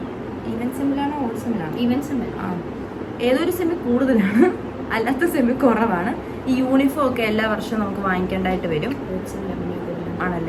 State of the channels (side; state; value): both; identical; correlation 1.00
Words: ഈവൻ സെമ്മിലാണോ ഓൾ സെമ്മിലാണോ? ഈവൻ സെമ്മിൽ ഏതൊരു സെമ്മി കൂടുതലാണ്, അല്ലാത്ത സെമ്മി കുറവാണ്. ഈ യൂണിഫോം ഒക്കെ എല്ലാ വർഷവും നമുക്ക് വാങ്ങിക്കേണ്ടതായിട്ട് വരും